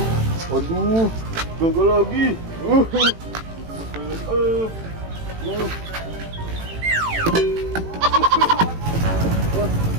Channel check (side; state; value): left; late; 18 ms